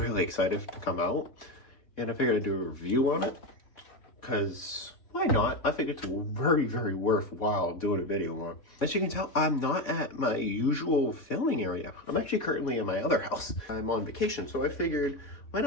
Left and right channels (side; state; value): right; late; 3.6 ms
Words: excited to come out, and I figured I'd do a review on it. Because why not? I think it's very worthwhile doing a video on. As you can tell, I'm not at my usual filming area. I'm actually currently in my other house. I'm on vacation, so I figured why